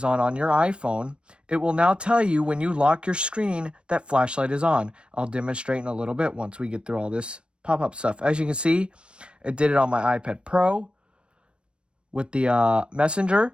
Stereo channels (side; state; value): left; late; 0.057 ms